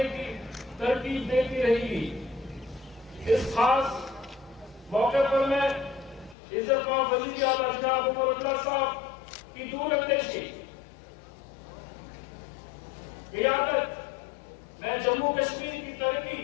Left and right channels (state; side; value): drops out; right; at 6.4 s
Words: की तरकीब देती रहेगी। इस खास मौके पर मैं इज़्ज़तमान वज़ीर आला जनाब उमर अब्दुल्ला साहब की दूरअंदेशी, क़ियादत में जम्मू कश्मीर की तरक्की